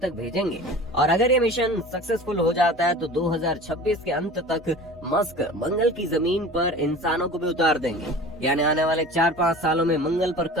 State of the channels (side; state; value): both; normal; correlation 0.39